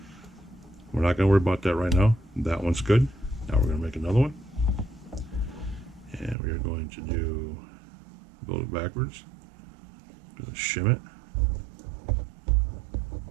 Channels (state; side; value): drops out; left; at 6.4 s